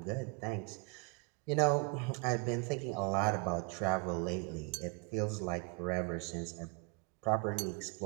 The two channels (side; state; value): left; quieter; 29.6 dB